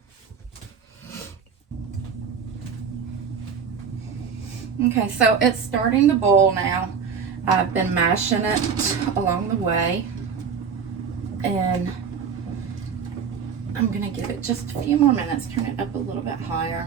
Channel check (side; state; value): left; quieter; 6.5 dB